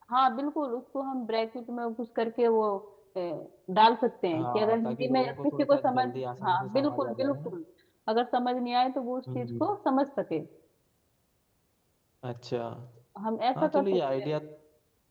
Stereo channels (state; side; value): identical; both; correlation 1.00